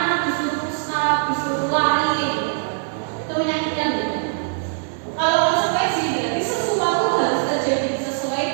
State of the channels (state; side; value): silent; left; digital silence